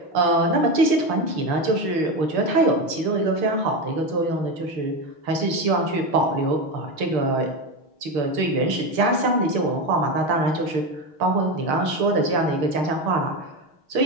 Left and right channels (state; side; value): late; left; 6.9 ms